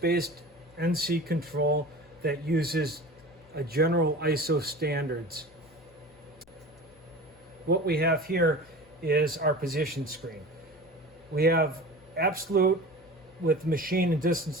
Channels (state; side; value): noise; left; hum, 27 dB below the sound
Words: NC control that uses a general ISO standards. What we have here is our position screen. We have absolute with machine and